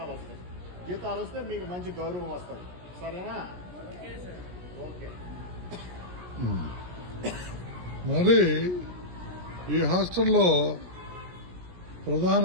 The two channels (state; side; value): late; left; 17 ms